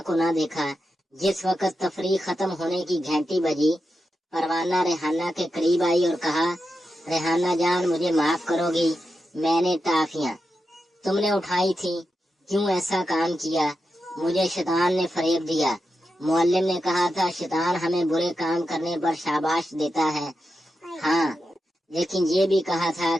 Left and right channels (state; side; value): normal; both; correlation 0.88